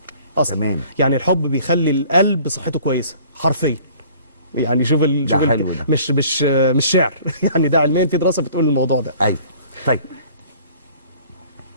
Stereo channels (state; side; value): inverted; both; correlation -0.51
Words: اصلا. تمام. يعني الحب بيخلي القلب صحته كويسه حرفيا. يعني شوف مش شعر يعني ده علميا في دراسه بتقول الموضوع ده. ايوه. طيب